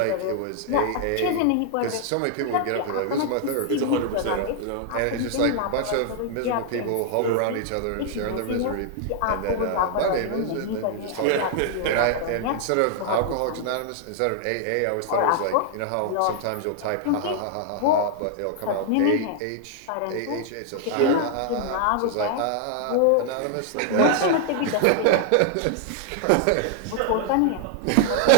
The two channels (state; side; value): different; both; correlation 0.00